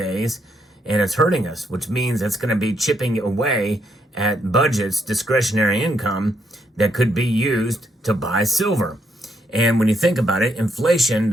And it's hurting us, which means it's going to be chipping away at budgets, discretionary income that could be used to buy silver. And when you think about it, inflation,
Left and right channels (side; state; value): both; normal; correlation 0.76